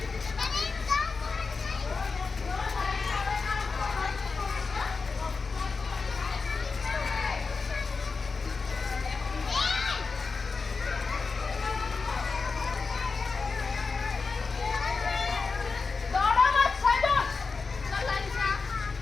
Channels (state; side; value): quieter; right; 4.5 dB